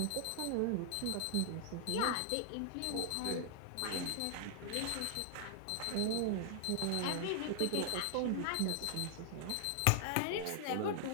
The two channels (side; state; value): both; different; correlation -0.01